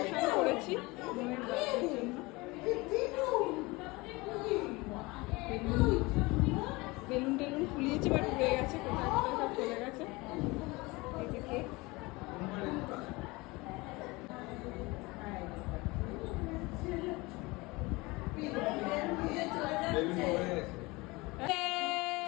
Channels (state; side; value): quieter; right; 23.5 dB